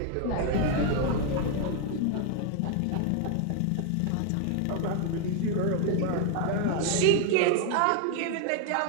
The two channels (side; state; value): both; different; correlation 0.00